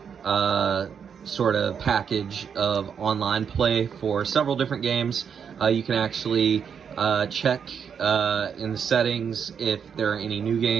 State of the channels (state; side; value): quieter; left; 7.2 dB